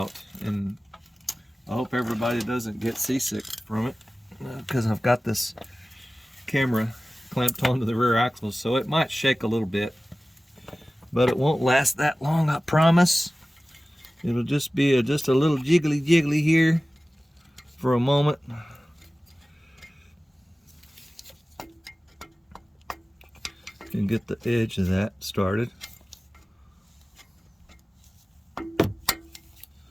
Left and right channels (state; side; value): normal; both; correlation 0.97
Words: and I hope everybody doesn't get seasick from it, because I've got this camera clamped onto the rear axle, so it might shake a little bit, but it won't last that long, I promise. It'll just be just a little jiggly here for a moment. Can get the edge of that started.